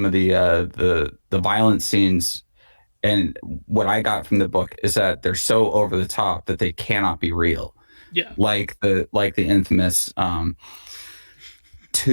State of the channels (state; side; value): inverted; both; correlation -1.00